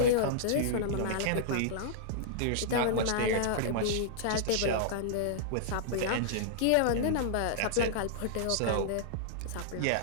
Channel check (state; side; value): different; both; correlation -0.02